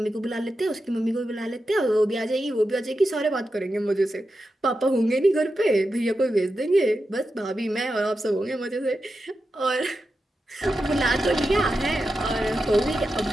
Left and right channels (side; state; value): both; normal; correlation 0.90